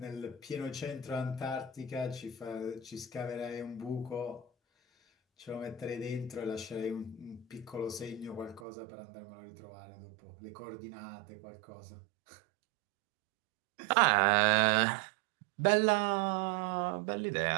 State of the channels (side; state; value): left; drops out; at 8.6 s